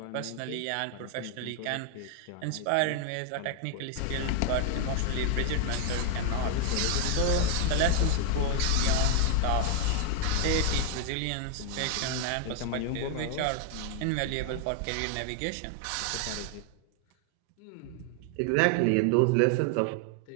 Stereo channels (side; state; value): both; different; correlation 0.00